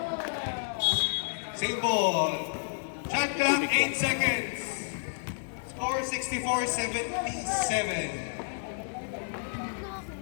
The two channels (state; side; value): silent; right; digital silence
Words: Same ball. Shot clock, 8 seconds. Score